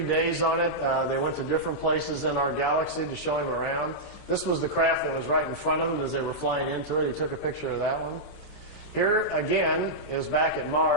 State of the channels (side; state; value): right; late; 27 ms